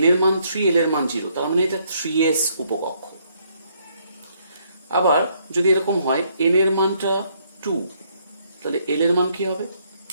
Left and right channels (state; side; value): inverted; both; correlation -0.70